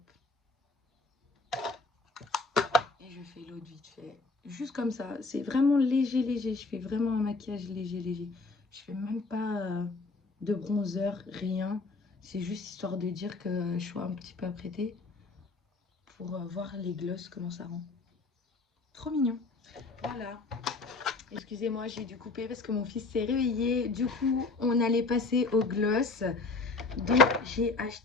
Et je fais l'autre vite fait. Juste comme ça, c'est vraiment léger, léger. Je fais vraiment un maquillage léger, léger. Je fais même pas de bronzer, rien. C'est juste histoire de dire que je sois un petit peu apprêtée pour voir les glosses, comment ça rend. Trop mignon. Voilà. Excusez-moi, j'ai dû couper parce que mon fils s'est réveillé. Du coup, on allait passer au gloss. Donc, j'ai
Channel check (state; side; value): quieter; right; 3.7 dB